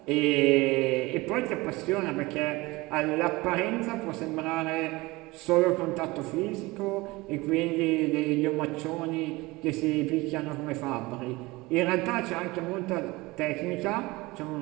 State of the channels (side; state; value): left; quieter; 21.9 dB